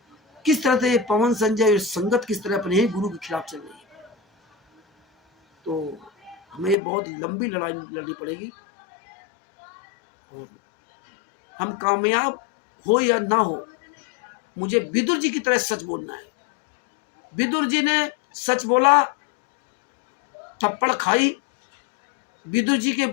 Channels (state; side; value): drops out; right; at 6.8 s